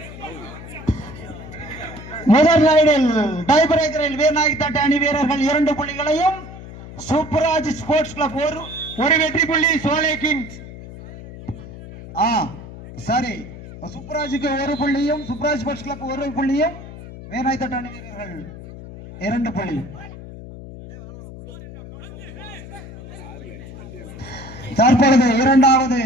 முதல் ரைடில் டை பிரேக்கரில் வேநாயக் தட் அணி வீரர்கள் 2 புள்ளிகளையும் சூப்பராஜ் ஸ்போர்ட்ஸ் கிளப் ஒரு வெற்றி புள்ளி சோலை கிங்ஸ் சரி சூப்பராஜுக்கு 1 புள்ளியும் சூப்பராஜ் ஸ்போர்ட்ஸ் கிளப் 1 புள்ளியும் வேநாயக் தட் அணி வீரர்கள் 2 புள்ளி. தற்பொழுது இரண்டாவது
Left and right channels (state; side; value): noise; left; hum, 14 dB below the sound